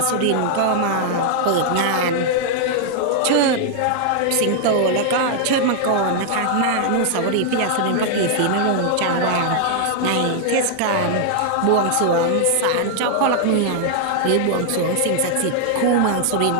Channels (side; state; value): both; different; correlation 0.00